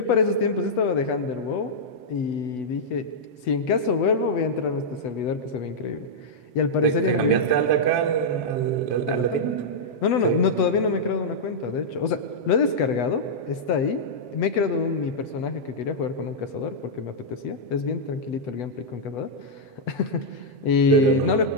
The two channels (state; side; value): late; right; 8.1 ms